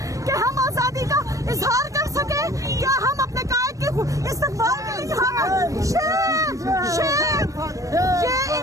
کہ ہم آزادی کا اظہار کر سکیں؟ کیا ہم اپنے قائد کے استقبال کے لیے ہم شیم شیم یہ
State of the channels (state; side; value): late; left; 0.16 ms